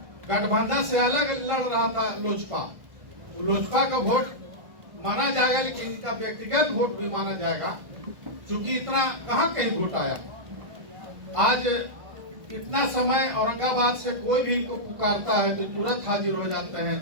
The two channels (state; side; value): late; left; 1.5 ms